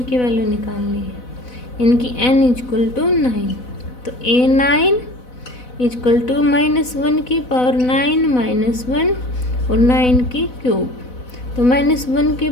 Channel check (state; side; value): late; right; 4.0 ms